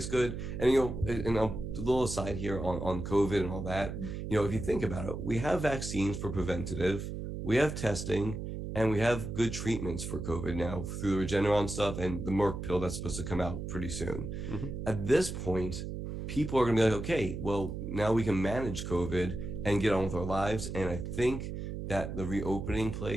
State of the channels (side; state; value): right; noise; hum, 6 dB below the sound